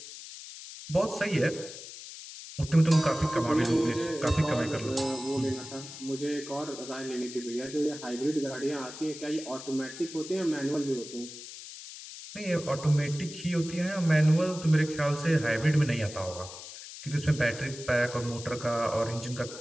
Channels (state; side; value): noise; left; hiss, 13 dB below the sound